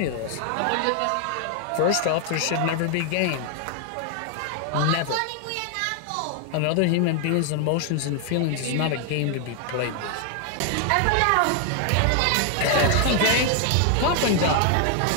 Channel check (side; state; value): both; different; correlation 0.00